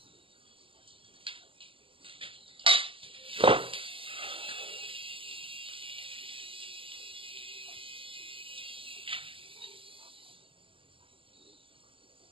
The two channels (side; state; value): left; late; 0.25 ms